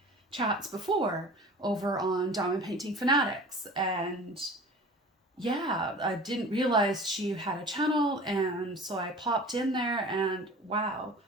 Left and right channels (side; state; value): both; normal; correlation 0.41